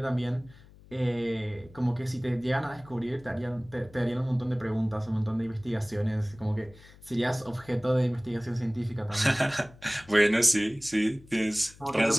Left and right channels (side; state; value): left; noise; hum, 23 dB below the sound